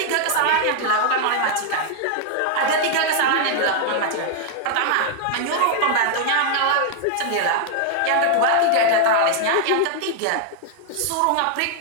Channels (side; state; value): both; different; correlation 0.00